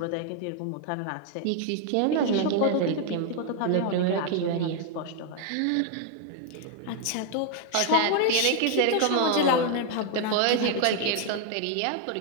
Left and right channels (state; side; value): different; both; correlation 0.00